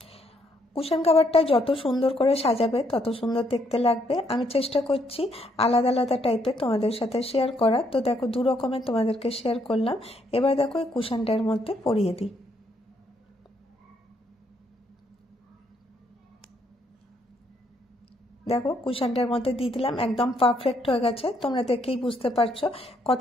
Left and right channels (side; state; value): both; normal; correlation 0.72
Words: কুশন কভারটা যত সুন্দর করে সাজাবে তত সুন্দর দেখতে লাগবে। আমি চেষ্টা করছি আলাদা আলাদা টাইপের তোমাদের সাথে শেয়ার করা। তো দেখো দু রকমের তোমাদেরকে শেয়ার করলাম। এবার দেখো এই কুশনটার মধ্যে পরিয়ে দিই। দেখো কুশনটার মধ্যে দিয়ে দিলাম, একদম পারফেক্ট হয়ে গেছে, তোমরা দেখেই বুঝতে পারছো